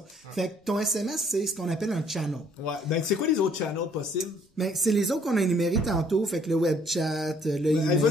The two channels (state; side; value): normal; both; correlation 0.62